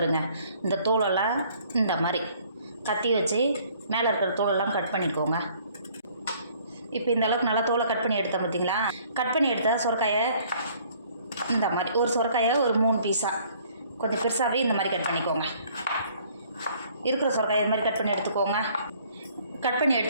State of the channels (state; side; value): inverted; both; correlation -0.59